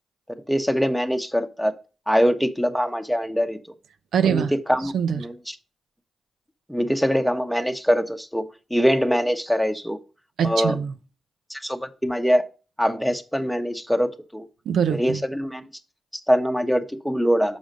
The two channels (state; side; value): normal; both; correlation 0.94